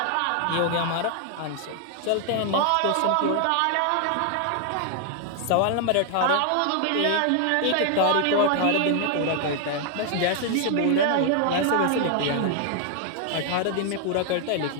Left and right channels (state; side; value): different; both; correlation 0.00